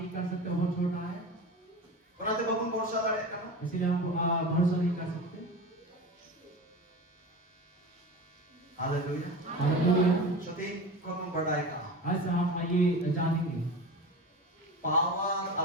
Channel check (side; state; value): both; normal; correlation 0.29